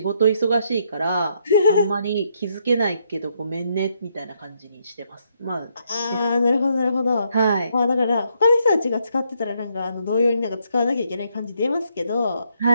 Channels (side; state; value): both; inverted; correlation -0.74